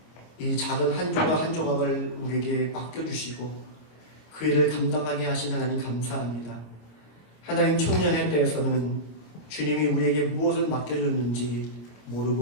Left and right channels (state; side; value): late; right; 26 ms